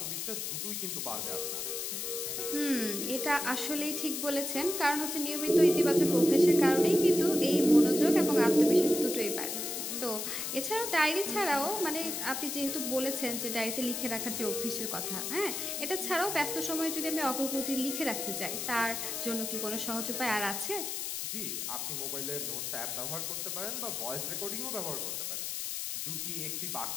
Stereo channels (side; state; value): left; noise; hiss, 3 dB below the sound